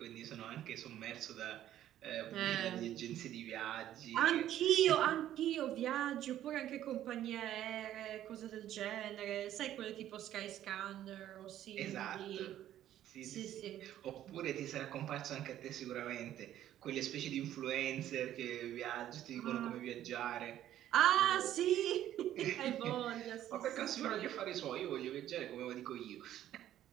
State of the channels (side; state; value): left; quieter; 12.1 dB